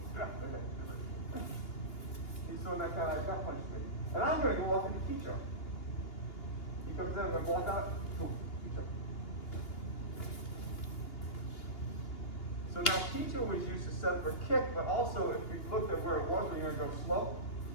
He's throwing that kind of gut punch to me. And I'm going to go off into Hicho. He comes in, I'm going to block out. Boom. Hicho. So now Hicho was used to set up a kick, but also if we looked at where it was, we're going to go slow.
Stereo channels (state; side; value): late; right; 2.8 ms